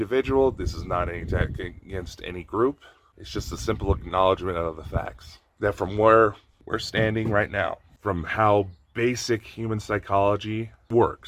This is not an attack against any group. It's just a simple acknowledgement of the facts. That from where we're standing right now, from how basic human psychology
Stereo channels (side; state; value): both; identical; correlation 1.00